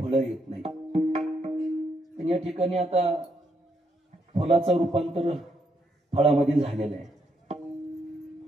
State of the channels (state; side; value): normal; both; correlation 0.77